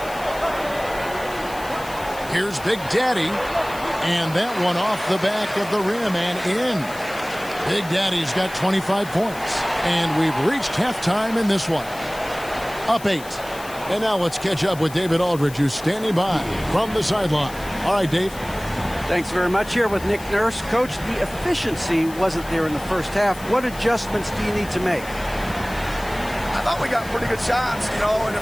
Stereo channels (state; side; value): noise; left; hiss, 17 dB below the sound